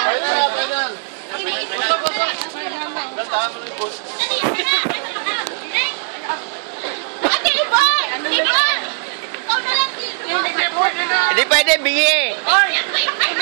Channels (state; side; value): silent; left; 62 dB below the other